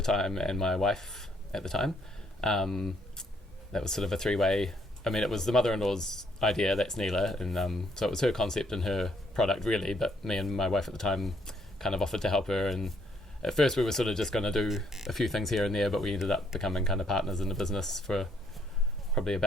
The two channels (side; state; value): both; normal; correlation 0.69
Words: time and my wife at the time. That was sort of a three-way. I mean, it was the mother-in-law's idea, that's Neela, and so it was her concept and her product really, but me and my wife at the time kind of offered to help her, and at first we were sort of just going to do a few things here and there, but we ended up becoming kind of partners in the business for probably